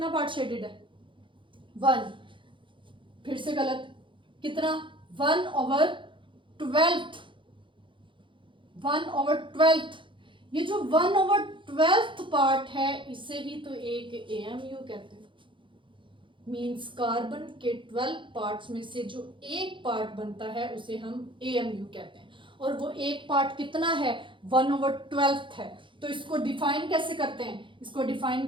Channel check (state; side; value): late; left; 0.24 ms